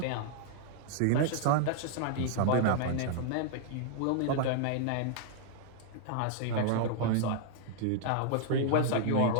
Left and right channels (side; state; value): both; different; correlation -0.01